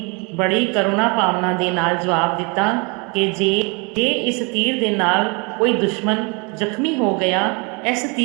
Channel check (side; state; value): left; quieter; 31.2 dB